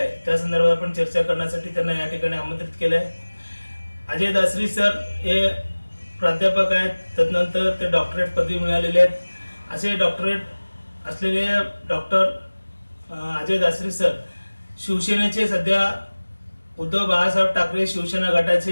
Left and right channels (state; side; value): inverted; both; correlation -1.00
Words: त्या संदर्भात आपण चर्चा करण्यासाठी त्यांना या ठिकाणी आमंत्रित केलं आहे. अजय दासरी सर हे प्राध्यापक आहेत, तदनंतर ते डॉक्टरेट पदवी मिळालेले आहेत. असे डॉक्टरेट असलेले डॉक्टर अजय दासरी सर शिवसेनेचे सध्या उद्धव बाळासाहेब ठाकरे शिवसेना